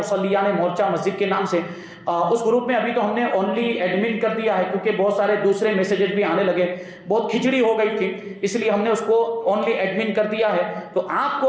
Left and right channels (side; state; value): both; identical; correlation 1.00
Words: مورچہ مسجد کے نام سے. اس گروپ میں ابھی تو ہم نے اونلی ایڈمن کر دیا ہے، کیونکہ بہت سارے دوسرے میسیجز بھی آنے لگے، بہت کھچڑی ہو گئی تھی، اس لیے ہم نے اس کو اونلی ایڈمن کر دیا ہے. تو آپ